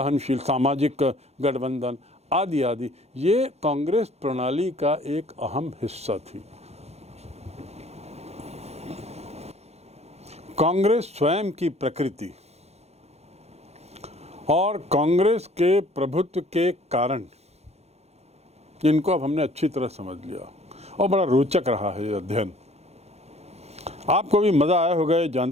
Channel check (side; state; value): left; late; 0.31 ms